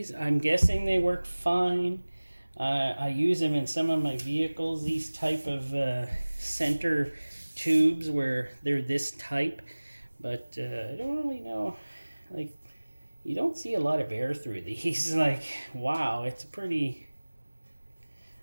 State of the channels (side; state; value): both; inverted; correlation -1.00